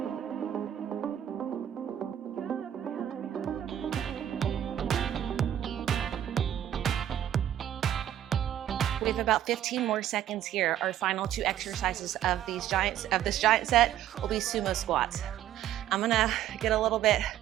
We have about 15 more seconds here. Our final 2 exercises of this giant set will be sumo squats. I'm gonna get a little bit,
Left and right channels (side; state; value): left; quieter; 11.3 dB